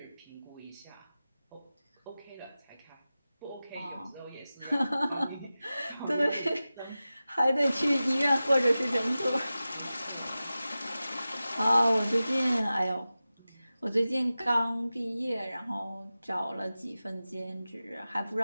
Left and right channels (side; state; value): both; inverted; correlation -0.95